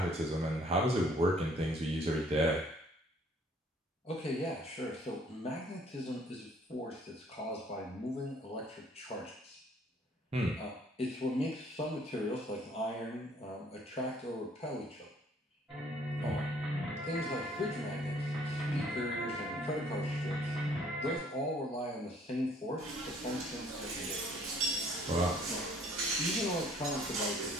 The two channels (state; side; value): normal; both; correlation 0.60